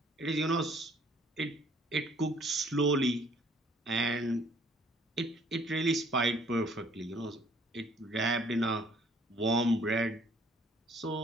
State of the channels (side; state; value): both; normal; correlation 0.60